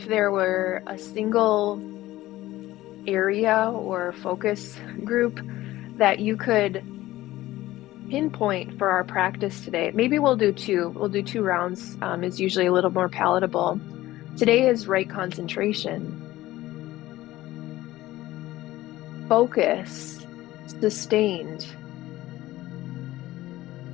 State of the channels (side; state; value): right; quieter; 16.3 dB